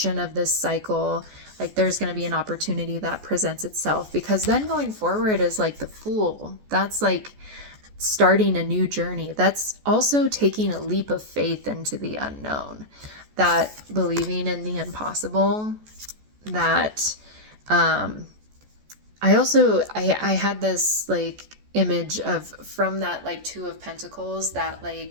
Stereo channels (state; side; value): late; left; 14 ms